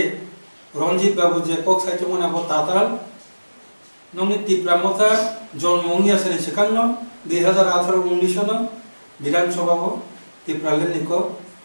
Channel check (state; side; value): inverted; both; correlation -1.00